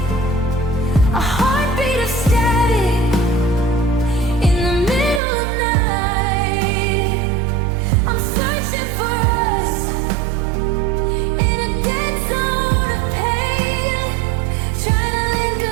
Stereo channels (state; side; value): drops out; left; at 5.2 s